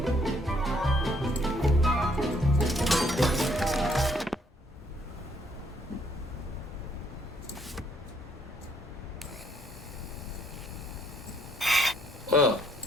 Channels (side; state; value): both; normal; correlation 0.68